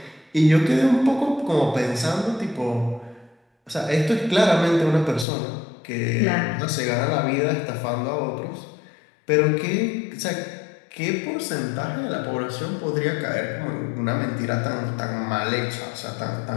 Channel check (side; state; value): right; drops out; at 5.2 s